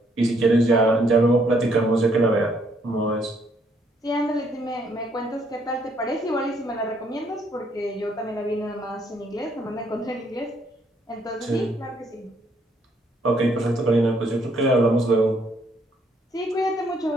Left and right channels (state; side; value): normal; both; correlation 0.69